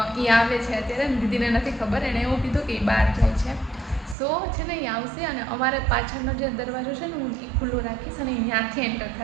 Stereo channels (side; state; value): left; drops out; at 4.2 s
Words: એ આવે છે અત્યારે. દીદીને નથી ખબર, એણે એવું કીધું કે એ બહાર જાય છે. સો છે ને એ આવશે અને અમારે પાછળનો જે દરવાજો છે ને હું એ ખુલ્લો રાખીશ અને ત્યાંથી એન્ટર